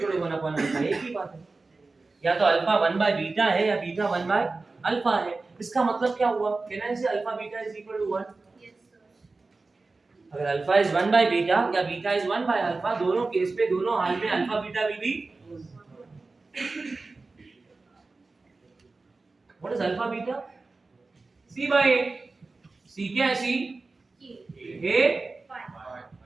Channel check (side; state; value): left; quieter; 3.7 dB